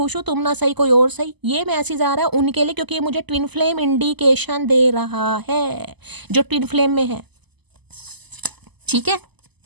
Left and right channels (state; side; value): late; left; 0.99 ms